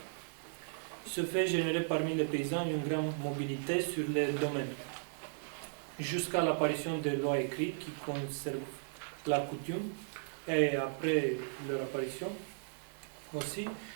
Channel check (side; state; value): left; silent; digital silence